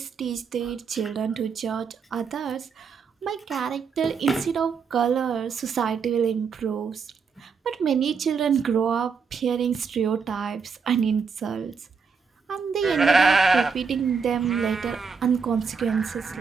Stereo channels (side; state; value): left; quieter; 5.7 dB